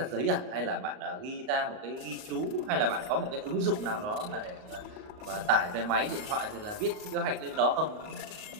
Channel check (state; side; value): late; left; 38 ms